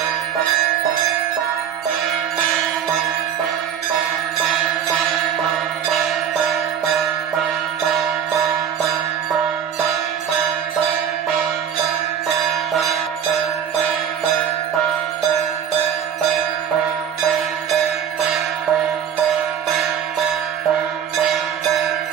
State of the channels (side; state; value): left; quieter; 8.6 dB